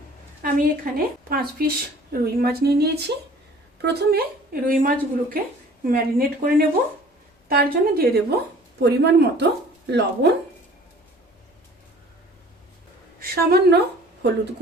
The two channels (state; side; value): normal; both; correlation 0.49